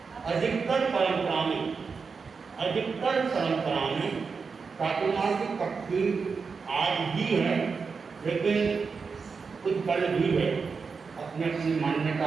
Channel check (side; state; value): left; quieter; 5.1 dB